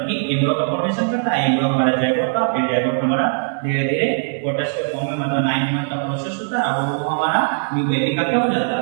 कि एम्ब्रियो का फॉर्मेशन करता है। एम्ब्रियो हमारा जैड होता है, फिर जैड हमारा धीरे धीरे फोटस के फॉर्म में मतलब 9 मंथ का प्रोसेस होता है, अब वो हमारा न्यू बेबी का क्या हो जाता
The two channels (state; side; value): silent; left; digital silence